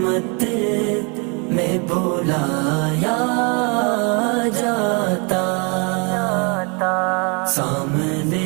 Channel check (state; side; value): quieter; left; 33.3 dB